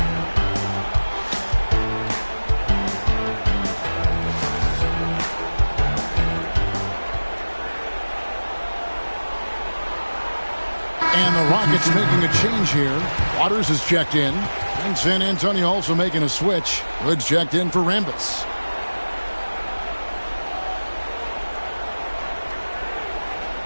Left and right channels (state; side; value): inverted; both; correlation -1.00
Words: And the Rockets making a change here. Waters is checked in. And San Antonio also making a switch. Hood's checked in for Rambis.